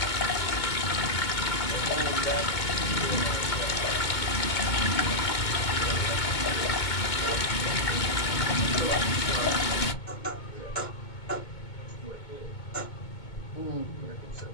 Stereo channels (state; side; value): late; right; 2.2 ms